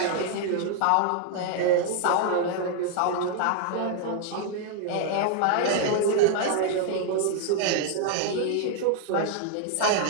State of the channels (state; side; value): different; both; correlation 0.00